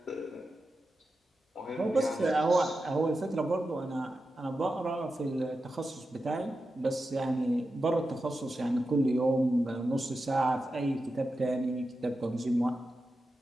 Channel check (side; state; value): both; normal; correlation 0.90